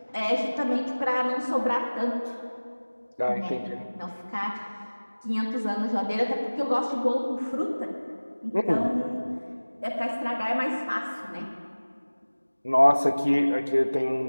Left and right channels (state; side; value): inverted; both; correlation -1.00